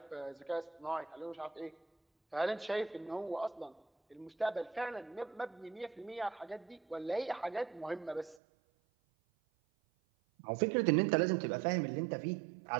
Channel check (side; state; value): left; drops out; at 8.4 s